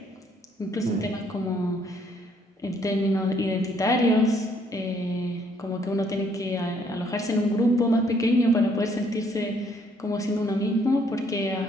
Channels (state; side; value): normal; both; correlation 0.66